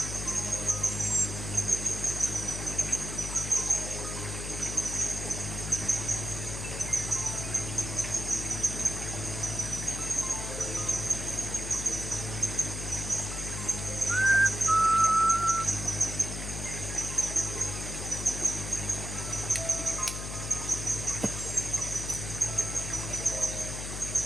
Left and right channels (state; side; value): noise; left; hum, 6 dB below the sound